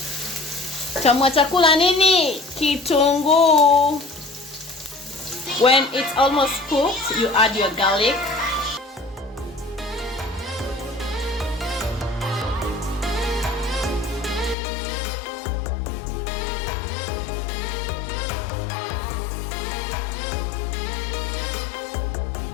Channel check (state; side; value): drops out; right; at 14.6 s